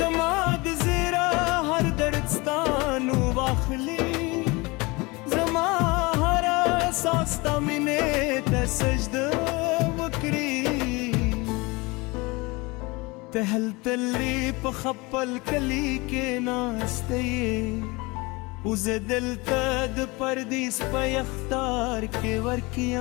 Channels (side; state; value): right; quieter; 24.9 dB